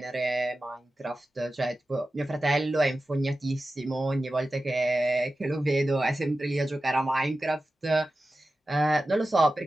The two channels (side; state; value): both; normal; correlation 0.94